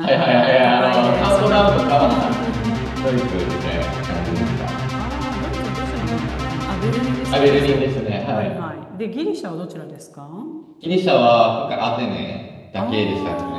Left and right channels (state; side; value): identical; both; correlation 1.00